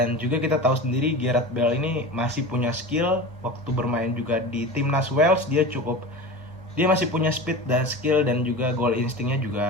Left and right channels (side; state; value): both; normal; correlation 0.31